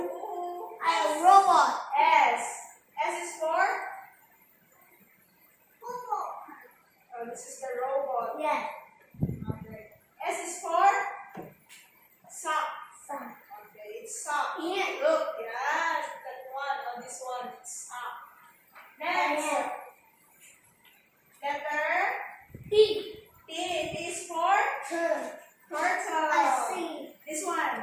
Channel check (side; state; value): both; identical; correlation 1.00